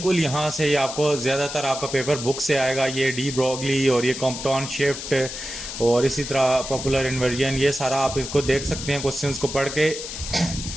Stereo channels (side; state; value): left; noise; hiss, 8 dB below the sound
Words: यहाँ से ये आपको ज़्यादातर आपका पेपर बुक से आएगा। ये डी ब्रोगली और ये कॉम्पटन शिफ्ट और इसी तरह पॉपुलर इन्वर्जन, ये सारा आप इसको देख सकते हैं क्वेश्चंस को पढ़ के।